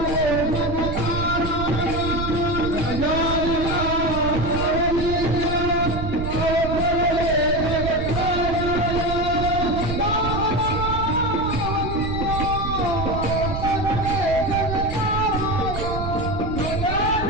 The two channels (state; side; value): noise; right; rumble, 5 dB below the sound